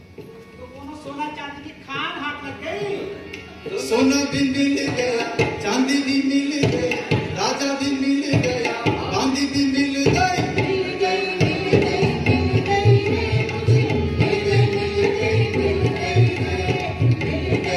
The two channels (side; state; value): both; identical; correlation 1.00